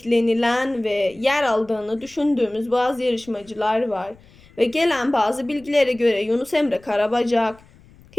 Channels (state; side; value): noise; left; rumble, 26 dB below the sound